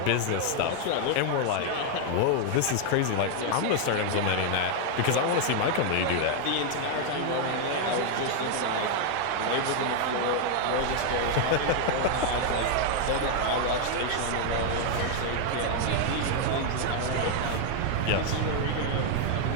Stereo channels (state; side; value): different; both; correlation 0.00